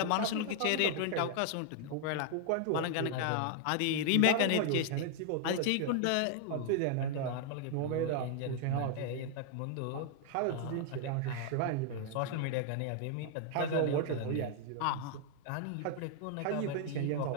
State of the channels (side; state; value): both; different; correlation 0.00